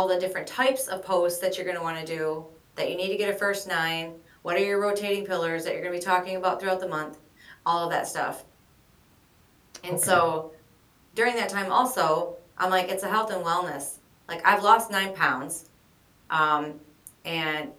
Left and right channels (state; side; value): identical; both; correlation 1.00